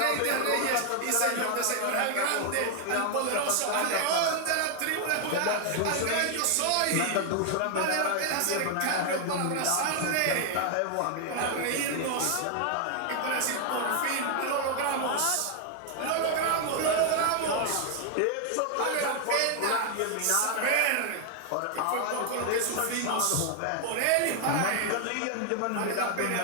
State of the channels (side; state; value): both; different; correlation 0.00